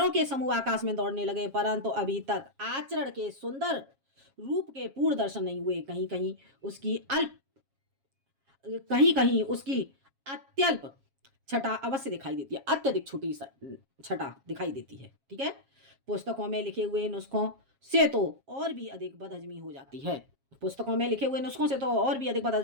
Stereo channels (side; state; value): left; late; 7.3 ms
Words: के समूह आकाश में दौड़ने लगे, परंतु अभी तक आचरण के सुंदर रूप के पूर्ण दर्शन नहीं हुए। कहीं कहीं उसकी अत्यल्प छटा अवश्य दिखाई देती है, अत्यधिक छोटी छटा दिखाई देती है। ठीक है? पुस्तकों में लिखे हुए नुस्खों से तो और भी अधिक बदहजमी हो जाती है। पुस्तकों में लिखे हुए नुस्खों से तो और भी अधिक